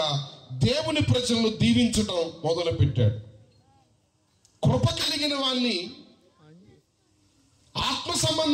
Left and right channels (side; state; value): both; identical; correlation 1.00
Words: దేవుని ప్రజలను దీవించడం మొదలు పెట్టాడు. కృప కలిగిన వాణ్ణి ఆత్మ